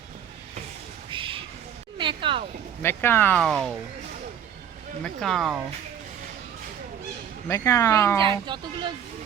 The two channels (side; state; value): left; quieter; 8.9 dB